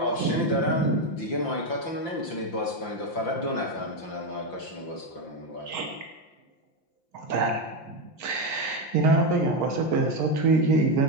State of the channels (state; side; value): late; right; 5.8 ms